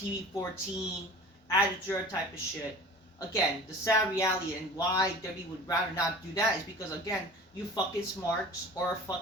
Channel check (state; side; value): normal; both; correlation 0.41